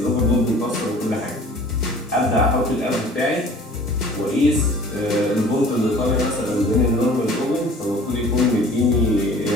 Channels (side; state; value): both; normal; correlation 0.48